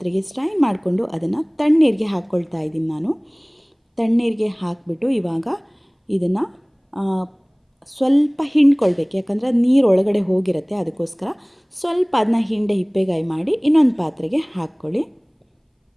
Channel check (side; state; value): both; identical; correlation 1.00